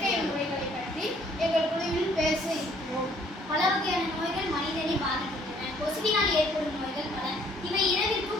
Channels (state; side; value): normal; both; correlation 0.61